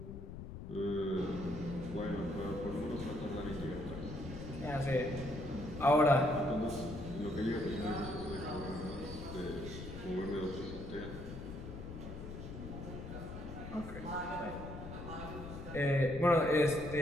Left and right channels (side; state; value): left; noise; rumble, 9 dB below the sound